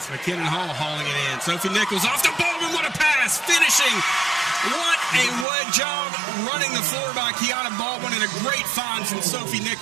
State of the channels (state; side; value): drops out; left; at 5.5 s